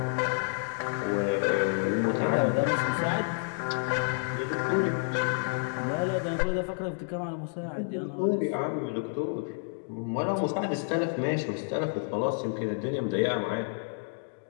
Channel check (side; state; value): right; silent; digital silence